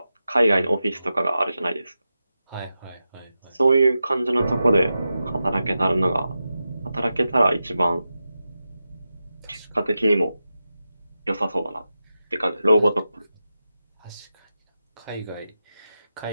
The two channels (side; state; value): both; inverted; correlation -0.91